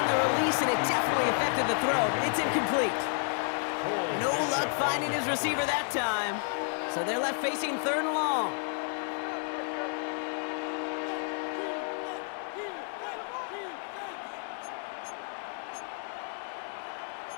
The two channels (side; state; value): right; silent; 57 dB below the other